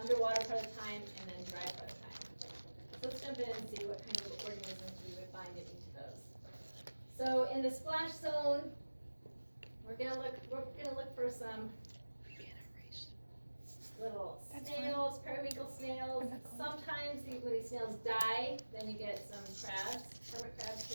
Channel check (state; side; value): inverted; both; correlation -1.00